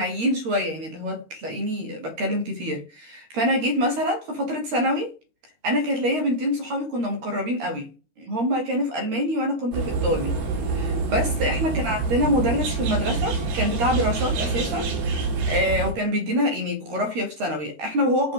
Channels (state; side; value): late; left; 13 ms